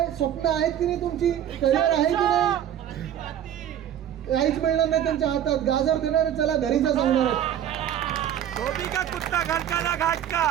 स्वप्न आहेत की नाही, तुमची करिअर आहे की नाही? काहीच मिळणार नाही त्यांच्या हातात. गाजर देणार, चला घरी जा सांगणार.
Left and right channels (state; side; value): quieter; left; 10.4 dB